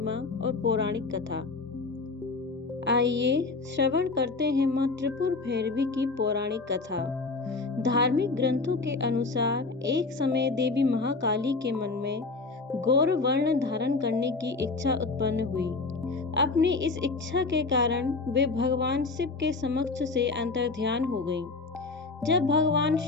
और पौराणिक कथा। आइए श्रवण करते हैं माँ त्रिपुर भैरवी की पौराणिक कथा। धार्मिक ग्रंथों के अनुसार एक समय देवी महाकाली के मन में गौर वर्ण धारण करने की इच्छा उत्पन्न हुई। अपनी इस इच्छा के कारण वे भगवान शिव के समक्ष से अंतर्ध्यान हो गईं। जब भगवान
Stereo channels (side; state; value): right; quieter; 3.9 dB